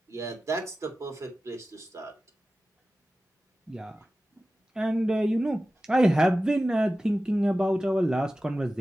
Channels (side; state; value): both; normal; correlation 0.95